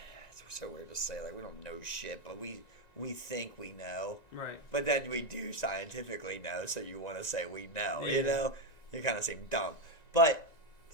so weird to say, like we don't know shit, but we think we know. Right. But then we do scientifically know, so you want to say we know. Yeah. You know, you kind of seem dumb. But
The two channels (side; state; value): right; late; 1.9 ms